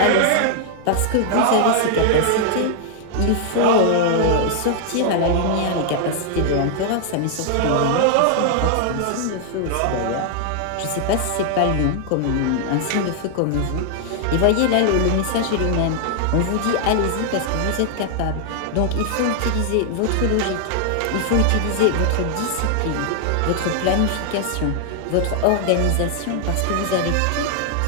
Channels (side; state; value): both; different; correlation 0.00